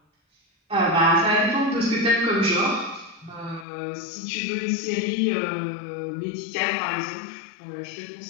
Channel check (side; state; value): right; drops out; at 3.7 s